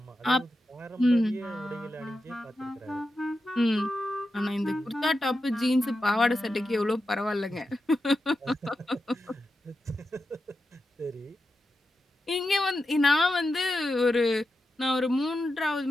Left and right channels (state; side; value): normal; both; correlation 0.89